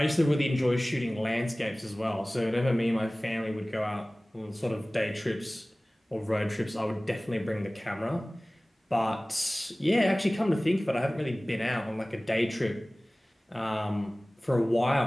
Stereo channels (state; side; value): normal; both; correlation 0.98